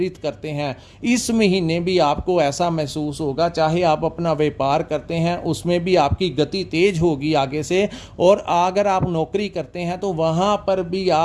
करते हैं। इस महीने भी आपको ऐसा महसूस होगा, चाहे आप अपना व्यापार करते हैं उसमें भी आपकी गति तेज होगी आगे से, और अगर आप नौकरी करते हैं तो वहाँ पर भी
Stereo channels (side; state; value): both; identical; correlation 1.00